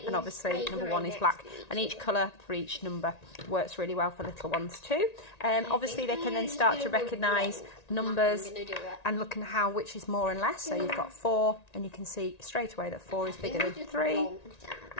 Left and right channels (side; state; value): right; late; 1.9 ms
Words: and obviously number 1 is black, and each colour for each number works really well for little ones too. Obviously they can then start to recognise numbers and look at how which is more and less. So you've got 4 and you can see straight away that 4 is bigger than 3,